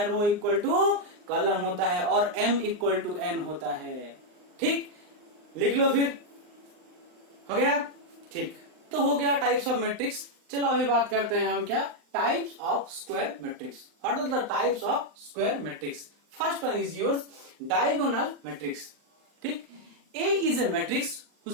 रो इक्वल टू कॉलम होता है और एम इक्वल टू एन होता है। ठीक, लिख लो फिर। हो गया? ठीक, तो हो गया टाइप्स ऑफ मैट्रिक्स। चलो अभी बात करते हैं हम क्या? Types of square matrix. What are the types of square matrix? First one is yours diagonal matrix. ठीक, A is a matrix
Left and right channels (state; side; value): late; left; 39 ms